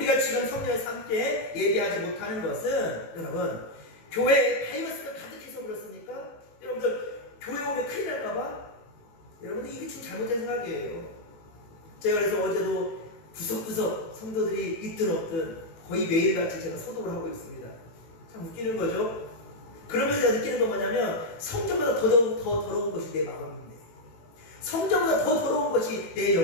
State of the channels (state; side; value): late; right; 18 ms